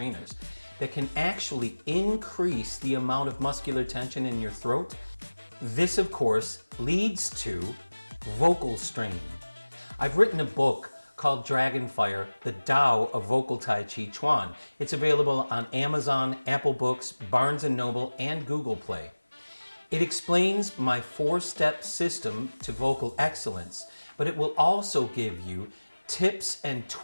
that can actually increase the amount of muscular tension in your throat? This, of course, leads to vocal strain. I've written a book called Dragonfire, the Tao of Vocal Tai Chi Chuan. It's available on Amazon, Apple Books, Barnes & Noble, and Google Play. It explains my 4-step system to vocal excellence, but it will also give you tips and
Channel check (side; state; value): both; inverted; correlation -1.00